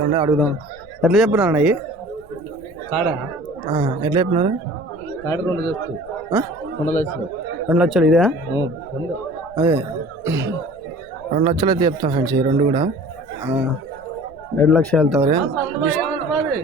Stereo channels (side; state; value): left; noise; rumble, 25 dB below the sound